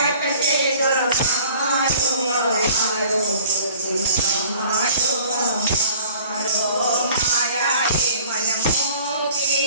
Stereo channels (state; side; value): inverted; both; correlation -0.50